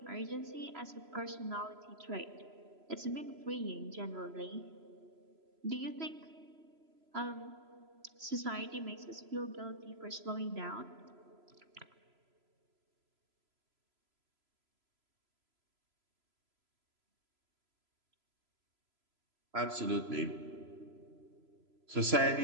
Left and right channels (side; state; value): left; late; 3.0 ms